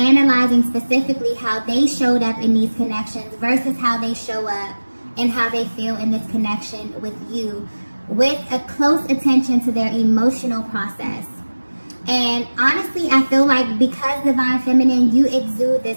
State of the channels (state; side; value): inverted; both; correlation -1.00